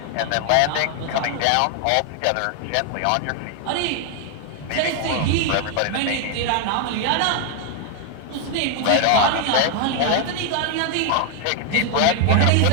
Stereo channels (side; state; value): both; different; correlation 0.00